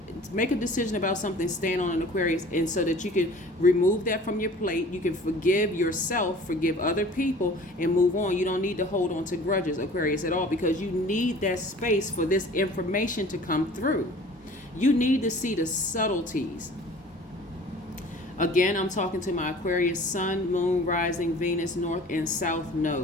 make a decision about something, stand on an Aquarius, and so that you can remove that from your plate. You can forgive yourself, forgive other people, and move on. You don't need to hold on to grudges, Aquarius, at all, because you need that space for this information to come through. You need to see the subtleties. Again, I'm talking to my Aquarius sun, moon, rising, Venus, north and south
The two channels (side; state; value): both; normal; correlation 0.46